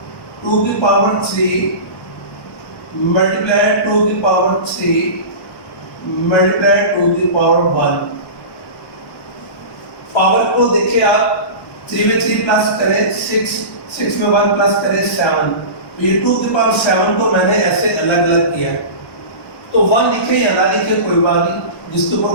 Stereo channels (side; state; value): right; late; 1.1 ms